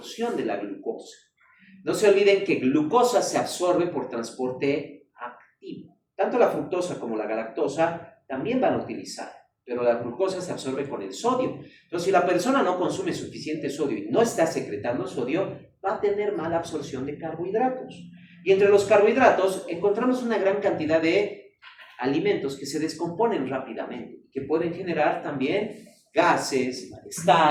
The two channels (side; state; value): both; identical; correlation 1.00